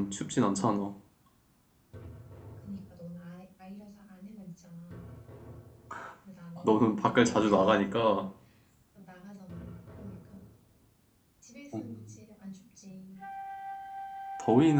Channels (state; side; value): identical; both; correlation 1.00